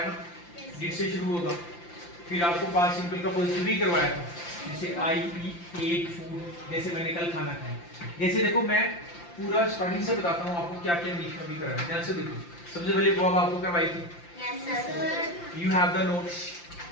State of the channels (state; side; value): late; right; 5.8 ms